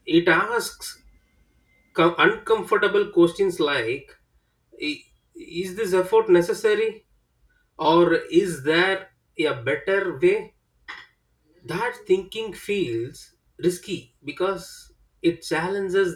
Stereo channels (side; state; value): both; identical; correlation 1.00